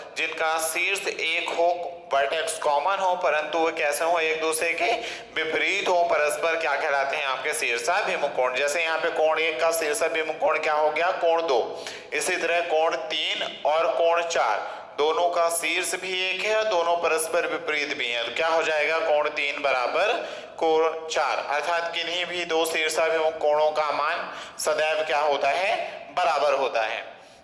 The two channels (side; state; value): both; identical; correlation 1.00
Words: जिनका शीर्ष एक हो, वर्टेक्स कॉमन हो, परंतु वो कैसे हो, एक दूसरे के विपरीत हो, परस्पर क्या कहलाते हैं आपके शीर्षाभिमुख कोण। जैसे यहाँ पे कोण 1 का शीर्षाभिमुख कोण क्या हो गया, कोण 2। इसी तरह कोण 3 और कोण 4 दोनों का शीर्ष भी एक है और दोनों परस्पर विपरीत भी हैं, तो क्या हो जाएगा, कोण 3 बराबर कोण 4। अर्थात किन्हीं भी दो शीर्षाभिमुख कोणों का मान सदैव क्या होता है, बराबर होता है।